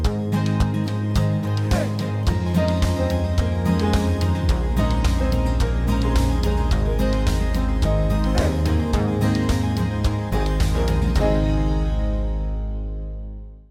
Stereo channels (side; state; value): both; identical; correlation 1.00